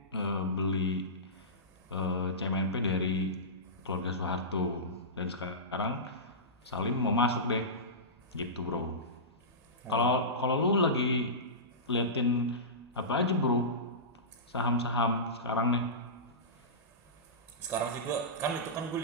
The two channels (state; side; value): normal; both; correlation -0.19